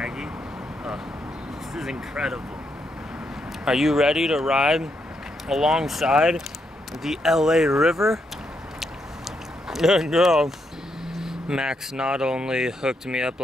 Oh, this is incredible. Are you ready to ride alongside the LA River? No. Max not only hooked me up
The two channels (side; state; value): both; normal; correlation 0.79